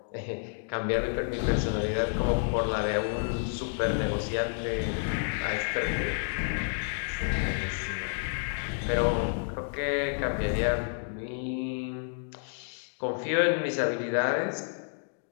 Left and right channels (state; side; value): silent; right; digital silence